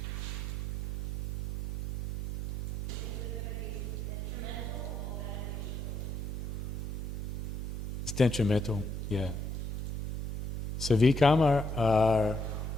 It's detrimental, yeah. So vikarma are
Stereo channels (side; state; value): right; noise; hum, 6 dB below the sound